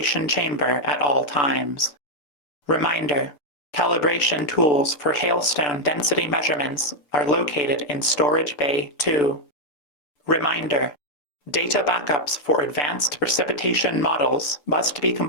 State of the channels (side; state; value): right; late; 6.8 ms